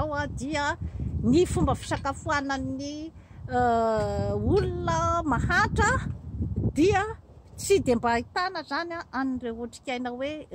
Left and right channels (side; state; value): both; identical; correlation 1.00